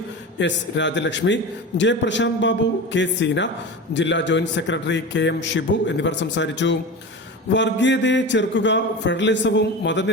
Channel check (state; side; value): normal; both; correlation 0.28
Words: S. Rajalakshmi, J. Prasanth Babu, K. Seena, ജില്ലാ ജോയിന്റ് സെക്രട്ടറി KM ഷിബു എന്നിവർ സംസാരിച്ചു. വർഗീയതയെ ചെറുക്കുക, ഫെഡറലിസവും